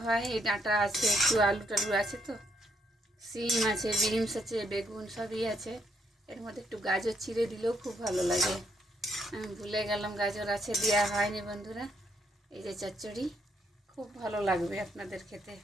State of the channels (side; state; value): both; normal; correlation 0.74